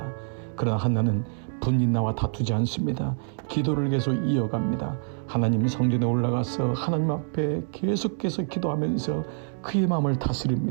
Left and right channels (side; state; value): left; silent; digital silence